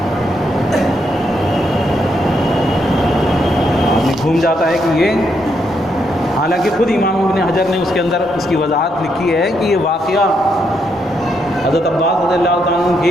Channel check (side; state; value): both; normal; correlation 0.77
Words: گھوم جاتا ہے کہ یہ، حالانکہ خود امام ابن حجر نے اس کے اندر اس کی وضاحت لکھی ہے کہ یہ واقعہ حضرت عباس رضی اللہ تعالیٰ عنہ